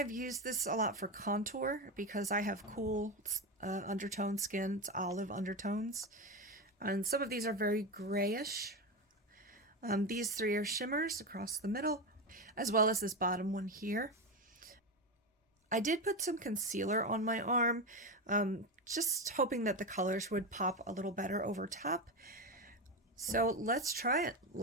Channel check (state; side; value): normal; both; correlation 0.16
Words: used this a lot for contour because I have cool undertone skin. It's olive undertones. And some of these are very grayish. These three are shimmers across the middle, as well as this bottom one here. I did put some concealer on my arm, just hoping that the colors would pop a little better over top. So let's try it.